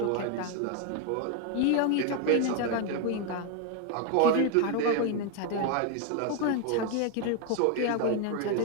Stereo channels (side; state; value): both; different; correlation 0.01